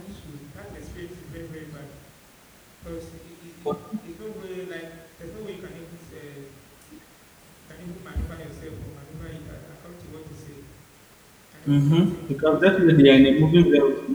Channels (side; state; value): both; identical; correlation 1.00